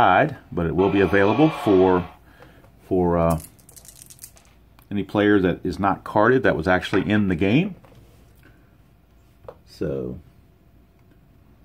But it will be available for any player that is not carded that was actually in the game. So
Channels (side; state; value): both; identical; correlation 1.00